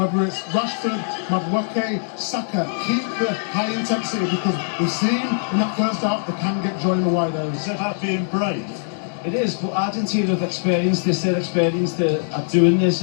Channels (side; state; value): right; silent; digital silence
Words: it's Rashford, Madueke, Saka. Keep the high intensity, because we've seen in that first half they can get joy in the wide areas. It's about being brave. It is, but Argentina have experienced this, they're experienced at doing this.